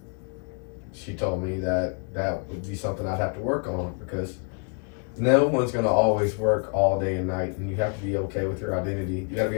She told me that would be something I'd have to work on, because no one's gonna always work all day and night, and you have to be okay with your identity. You gotta be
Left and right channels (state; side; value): quieter; right; 39.8 dB